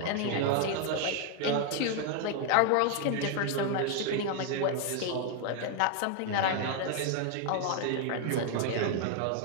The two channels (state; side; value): different; both; correlation 0.00